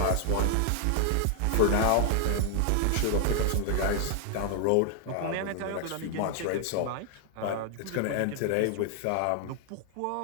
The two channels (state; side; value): different; both; correlation 0.00